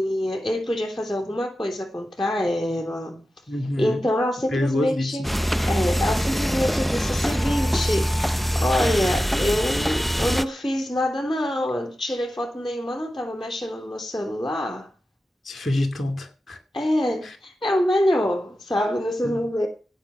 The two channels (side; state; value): both; normal; correlation 0.92